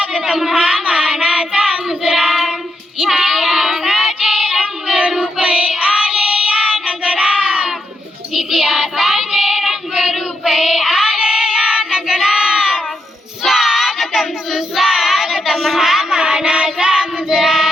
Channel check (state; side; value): normal; both; correlation 0.81